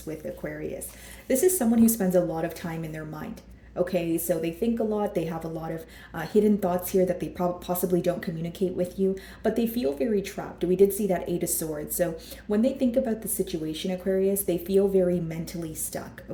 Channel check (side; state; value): both; identical; correlation 1.00